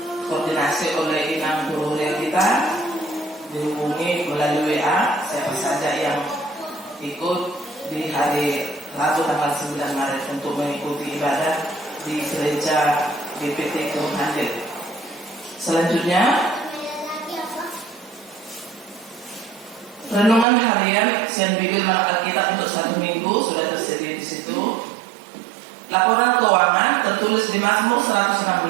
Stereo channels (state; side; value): drops out; left; at 20.5 s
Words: oleh inang guru kita, dihubungi melalui WA siapa saja yang ikut di hari Rabu tanggal 9 Maret untuk mengikuti ibadah di gereja GPT Kebun Handil. Selanjutnya renungan harian Sian Bigil Alkitab untuk 1 minggu sudah tersedia di situ. Laporan keuangan tertulis di Mazmur 116